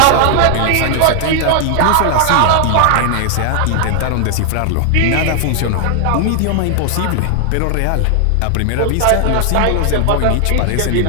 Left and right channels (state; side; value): different; both; correlation 0.00